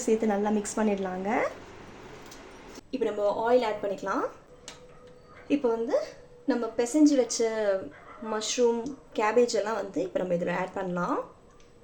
சேர்த்து நல்லா மிக்ஸ் பண்ணிடலாங்க. இப்போ நம்ம ஆயில் ஆட் பண்ணிக்கலாம். இப்போ வந்து நம்ம பிசைஞ்சு வச்ச மஷ்ரூம், கேபேஜ் எல்லாம் வந்து இப்போ நம்ம இதில் ஆட் பண்ணலாம்.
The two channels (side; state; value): both; identical; correlation 1.00